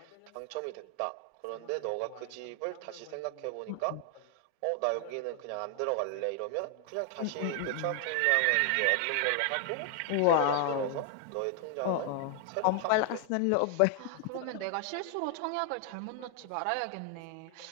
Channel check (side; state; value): both; different; correlation 0.00